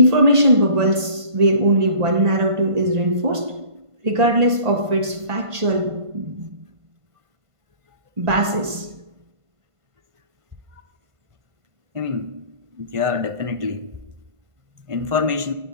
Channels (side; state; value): left; late; 1.5 ms